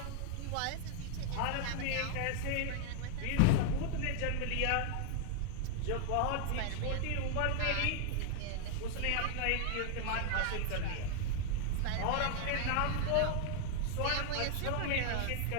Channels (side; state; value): both; different; correlation 0.00